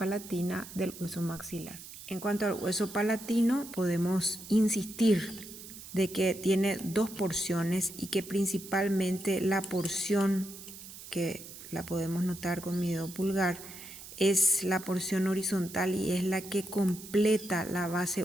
del hueso maxilar. En cuanto al hueso palatino, podemos insistir de que tiene dos porciones y que principalmente la porción que la podemos notar con mi dedo pulgar es la porción horizontal y es la que completa la base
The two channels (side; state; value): right; noise; hiss, 14 dB below the sound